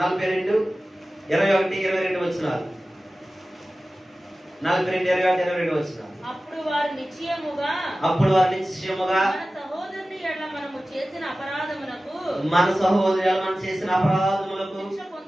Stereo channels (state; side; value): normal; both; correlation 0.96